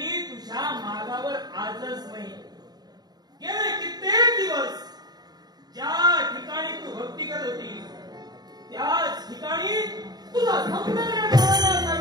तुझ्या मागावर आजच नाही गेले कित्येक दिवस ज्या ठिकाणी तू भक्ती करत होती त्याच ठिकाणी तुझा सौंदर्य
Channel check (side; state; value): left; late; 0.20 ms